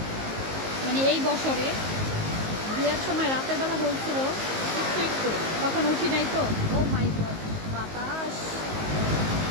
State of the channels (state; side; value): late; left; 19 ms